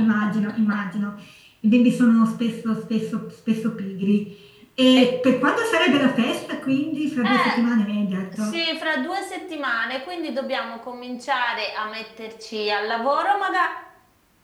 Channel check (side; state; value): both; identical; correlation 1.00